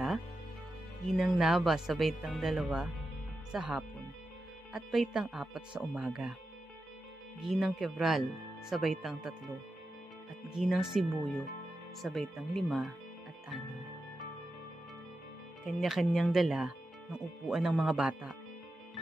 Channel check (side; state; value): both; normal; correlation 0.90